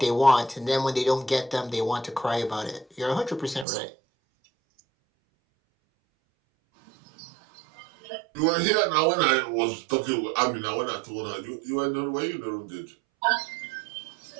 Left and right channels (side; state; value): left; drops out; at 3.7 s